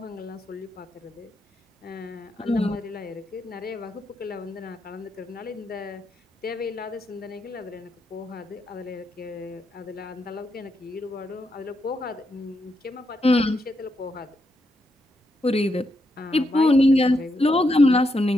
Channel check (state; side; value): normal; both; correlation 0.81